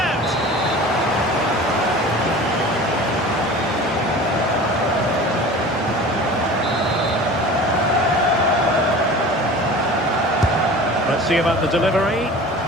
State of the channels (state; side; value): normal; both; correlation 0.39